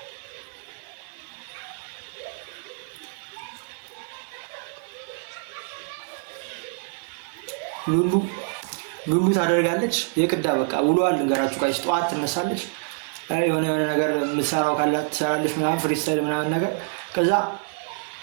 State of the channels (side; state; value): left; silent; 61 dB below the other